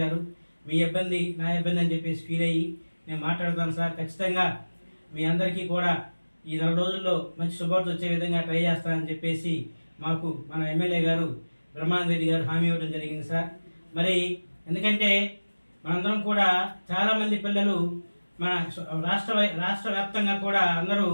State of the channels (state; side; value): inverted; both; correlation -1.00